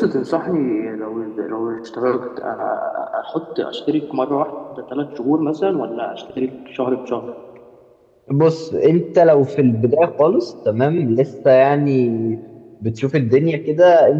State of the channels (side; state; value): both; identical; correlation 1.00